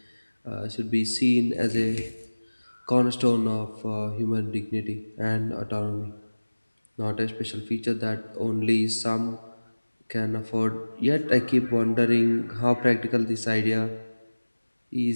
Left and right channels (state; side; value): inverted; both; correlation -1.00